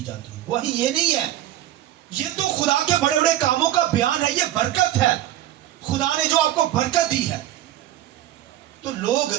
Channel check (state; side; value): quieter; left; 13.1 dB